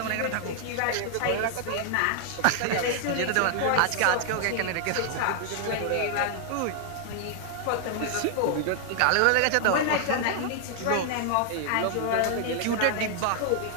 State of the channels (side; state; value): both; different; correlation 0.00